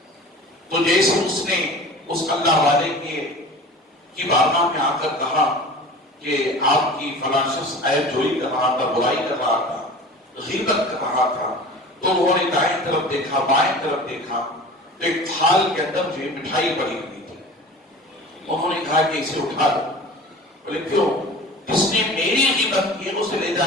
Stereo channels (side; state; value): both; normal; correlation 0.39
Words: تو جیسے اس نے اس اللہ والے کی بارگاہ میں آ کر کہا کہ آپ کی فلاں شخص عیب جوئی کر رہا تھا، برائی کر رہا تھا، غیبت کر رہا تھا، تو انہوں نے دائیں طرف دیکھا، بائیں طرف دیکھا، تو ایک تھال کے اندر جو مٹھائی پڑی ہوئی تھی۔ انہوں نے کہا کہ اسے اٹھا دو۔ بولے کیوں؟ جس نے میری غیبت کی ہے اسے لے جا